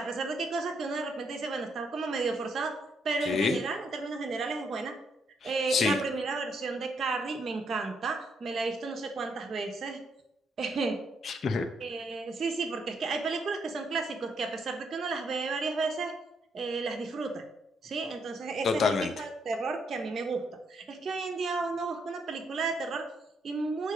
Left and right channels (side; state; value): both; normal; correlation 0.75